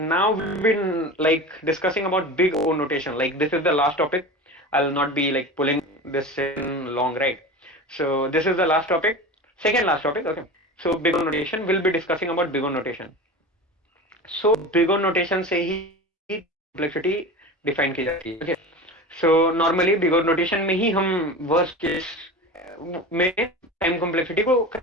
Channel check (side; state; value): both; normal; correlation 0.30